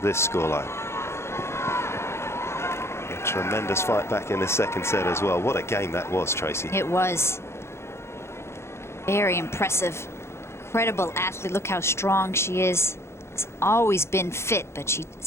this scoreline. A tremendous fight back in the second set as well. What a game that was, Tracy. It was. Very impressive. Incredible athlete. Look how strong she is. Has always been fit, but she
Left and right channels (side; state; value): right; late; 0.13 ms